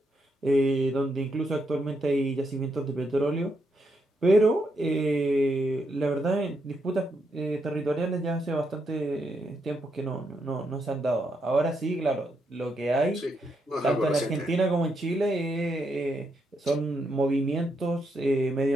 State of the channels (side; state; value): both; normal; correlation 0.80